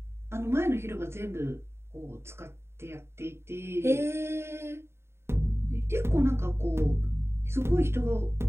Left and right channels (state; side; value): late; left; 0.12 ms